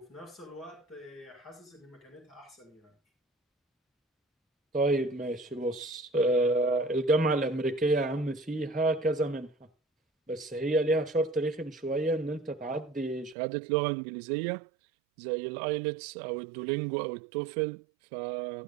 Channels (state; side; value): drops out; left; at 13.4 s